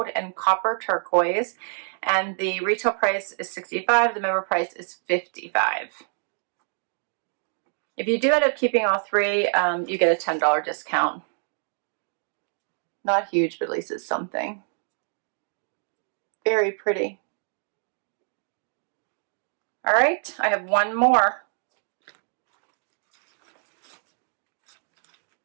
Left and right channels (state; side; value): silent; left; 61 dB below the other